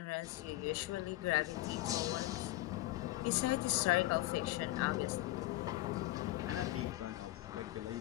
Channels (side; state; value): right; quieter; 17.5 dB